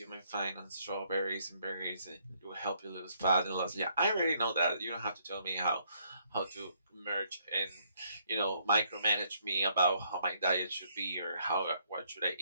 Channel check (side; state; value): both; inverted; correlation -0.70